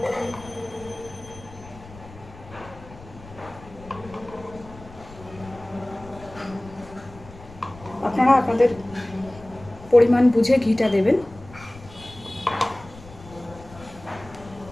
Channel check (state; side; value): noise; left; rumble, 19 dB below the sound